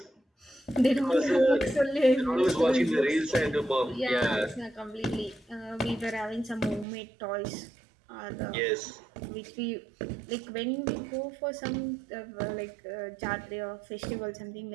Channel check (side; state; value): left; drops out; at 6.9 s